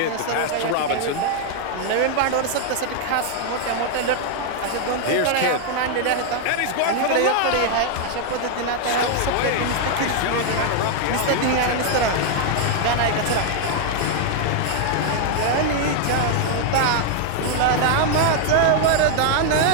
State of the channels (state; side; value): different; both; correlation 0.00